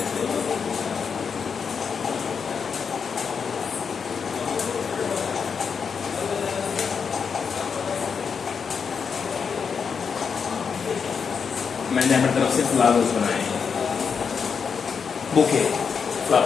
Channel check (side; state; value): right; quieter; 6.2 dB